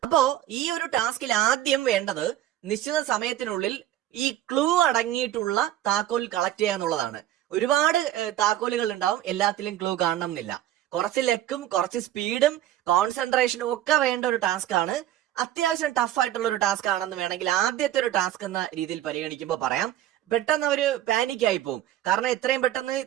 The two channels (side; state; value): left; quieter; 12.9 dB